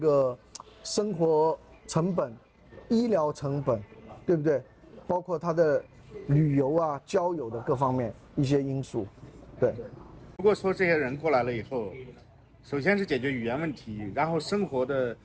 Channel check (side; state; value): both; identical; correlation 1.00